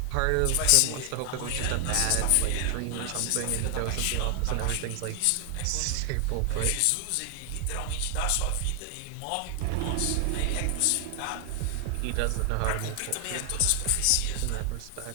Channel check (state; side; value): different; both; correlation 0.00